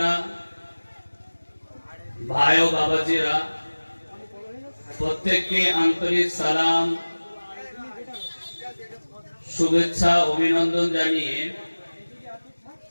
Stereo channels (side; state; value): both; inverted; correlation -1.00